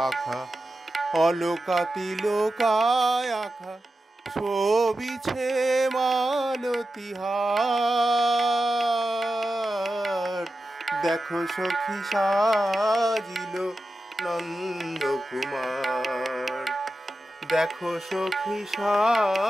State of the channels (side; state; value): both; normal; correlation 0.92